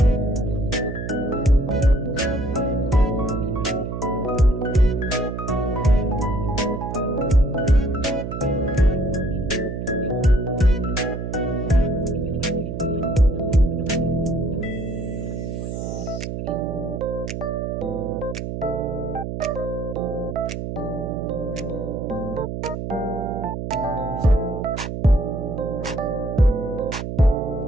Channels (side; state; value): right; noise; hum, 5 dB below the sound